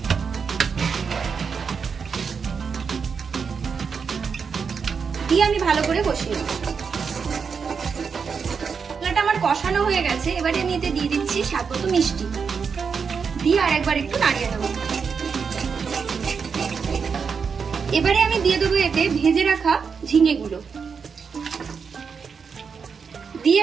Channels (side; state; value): left; quieter; 5.9 dB